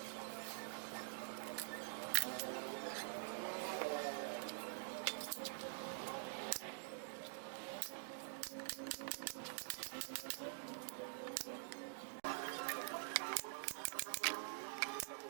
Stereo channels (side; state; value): left; silent; digital silence